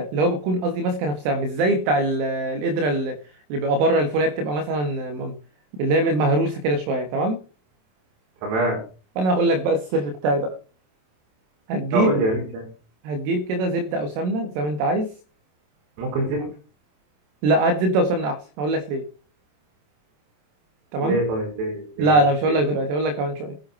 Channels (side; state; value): left; late; 27 ms